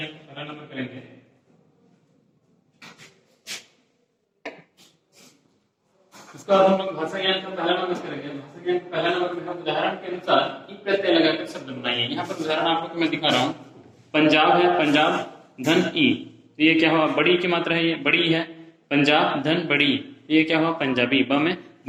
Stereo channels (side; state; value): both; identical; correlation 1.00